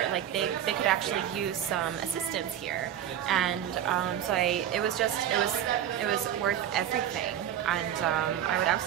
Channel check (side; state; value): left; quieter; 10.4 dB